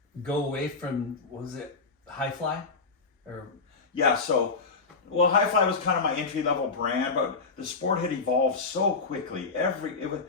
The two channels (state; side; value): quieter; right; 4.3 dB